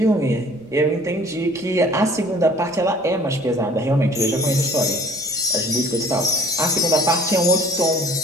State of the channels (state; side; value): noise; right; rumble, 28 dB below the sound